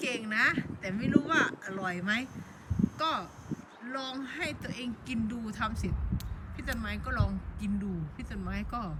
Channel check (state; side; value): identical; both; correlation 1.00